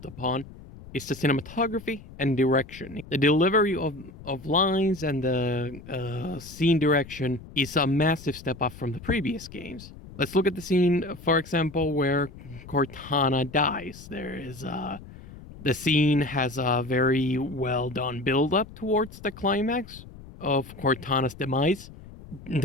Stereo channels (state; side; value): noise; left; rumble, 17 dB below the sound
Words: upon is the cinematography and direction. The delivery of lines and the scene direction is a massive step up from the previous games. Let's look at the scene, for example, where Cortana dies. The scene has a very well done build up towards the climax of Cortana's demise.